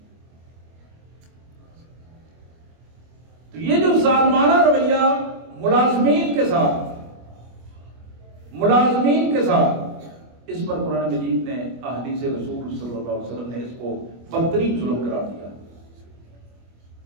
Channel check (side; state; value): left; late; 25 ms